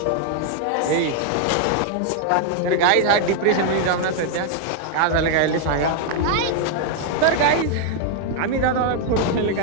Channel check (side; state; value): both; different; correlation 0.00